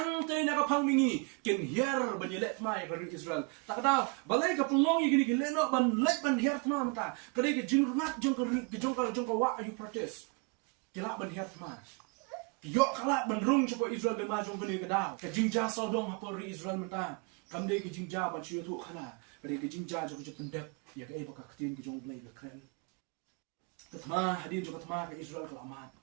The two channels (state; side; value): quieter; left; 31.3 dB